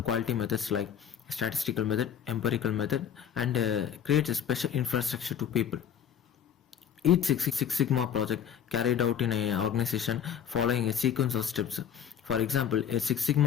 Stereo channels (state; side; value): quieter; right; 8.7 dB